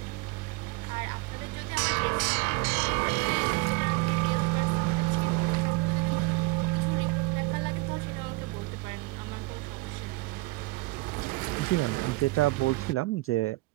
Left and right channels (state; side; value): quieter; left; 23.0 dB